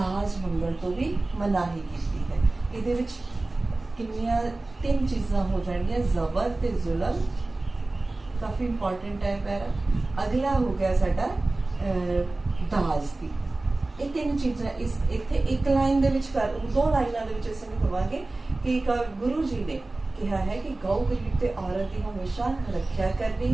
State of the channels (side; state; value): left; quieter; 3.0 dB